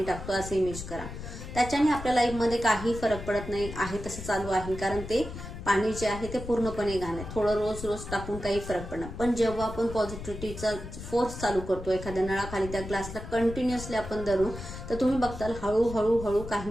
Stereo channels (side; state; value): left; noise; rumble, 10 dB below the sound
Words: टाकतो असं इमेज करा. त्याच्याने आपल्या लाईफमध्ये काही फरक पडत नाही, आहे तसं चालू आहे, कारण ते पाणी जे आहे ते पूर्णपणे घाण आहे. थोडं रोज रोज टाकून काही फरक पडणार. पण जेव्हा आपण पॉझिटिव्हिटीचा फोर्स चालू करतो एखाद्या नळाखाली त्या ग्लासला कंटिन्युअसली आपण धरू, तर तुम्ही बघताल हळूहळू हळू काही